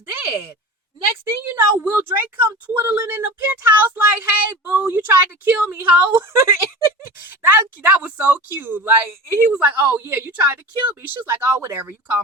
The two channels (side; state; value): both; normal; correlation 0.33